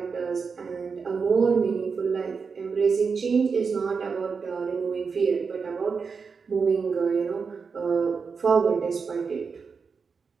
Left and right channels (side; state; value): left; quieter; 5.3 dB